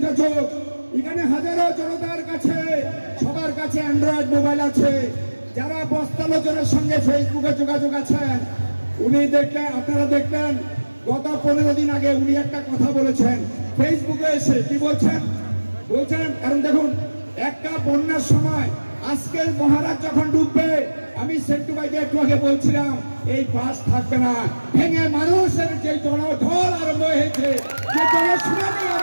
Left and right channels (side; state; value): both; inverted; correlation -1.00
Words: চোখ। এখানে হাজারো জনতার কাছে, সবার কাছে অ্যান্ড্রয়েড মোবাইল আছে। যারা বস্তালোচনের সঙ্গে ফেসবুকে যোগাযোগ আছেন, উনি দেখলেন, আপনারা দেখলেন গত 15 দিন আগে উনি একটা কথা বলেছেন ফেসবুকে এসে। কি বলছেন? কারণ দেখুন, একটা বন্যার সময় আজকের মহারাজ যখন ডুববে, আমি সেন্টু ভাইকে একটু আগে বলছিলাম এই বাস থাকবে না, ভেঙে মানুষের যে জনঢল আরম্ভ হয়েছে, যে জনশুনানি